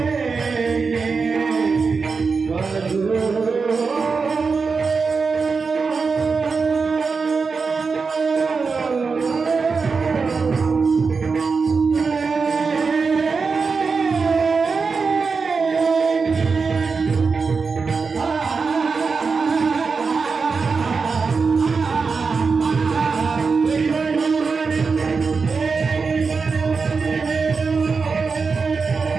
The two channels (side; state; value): left; quieter; 4.9 dB